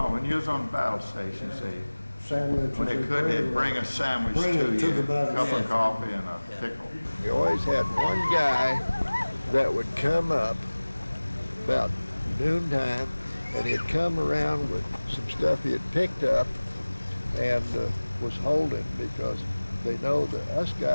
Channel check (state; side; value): inverted; both; correlation -1.00